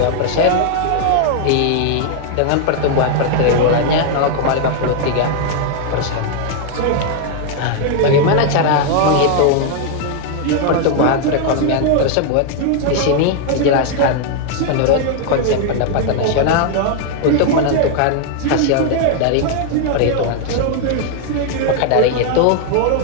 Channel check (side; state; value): both; different; correlation 0.00